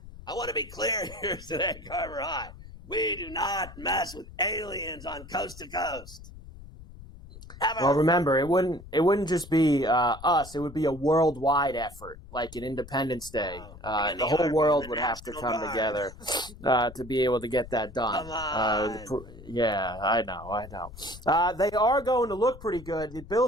I want to be clear here today, Carver High. We do not mess with aliens on Coast to Coast. Ever. Well, remember, it wouldn't just be us. It would be a worldwide effort, like an Independence Day. The whole world would have to come together to be able to get that done. Yeah, I know. They are going to look pretty good. The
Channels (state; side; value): noise; left; rumble, 17 dB below the sound